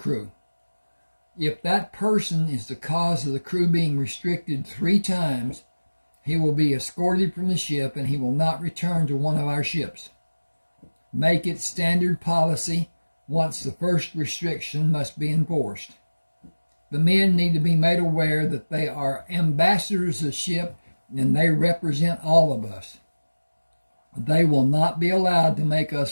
If that person is the cause of the crew being restricted 3 times, he will be escorted from the ship and he will not return to one of our ships. Make it standard policy once the first restriction must be enforced. The men need to be made aware that they are ambassadors of the ship and they represent all of us. They will not be allowed to make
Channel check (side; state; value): both; inverted; correlation -1.00